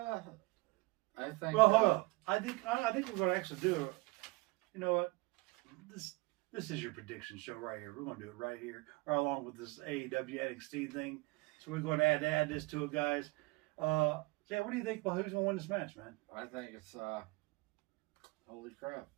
think. Well, hold up. I think we're going to actually do it. You know what? This is your prediction show right here. We're going to do it right here, right along with this AEW NXT thing. So we're going to add this to it, guys. Jay, what do you think about who's going to win this match, man? I think it's holy crap.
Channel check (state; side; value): quieter; left; 24.5 dB